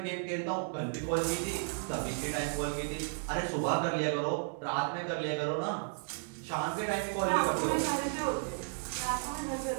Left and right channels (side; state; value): left; silent; digital silence